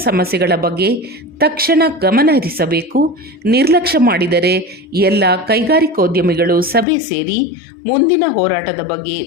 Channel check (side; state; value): right; drops out; at 6.9 s